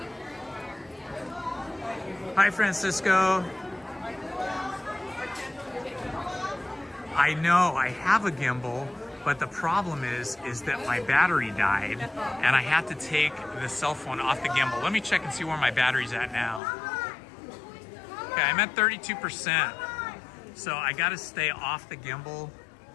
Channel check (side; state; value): right; drops out; at 16.6 s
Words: Hi, Francisco. I know, I have a gimbal, but the problem is that my battery died and I had to take the cell phone off the gimbal. Let me check and see where my battery's at now. Okay, I'm at 32%. So I gotta stay off the gimbal